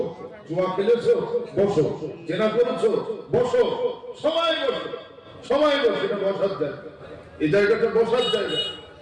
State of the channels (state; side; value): identical; both; correlation 1.00